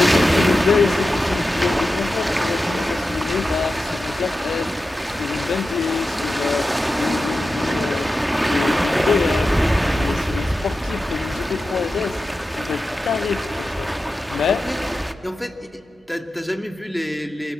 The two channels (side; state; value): both; normal; correlation 0.92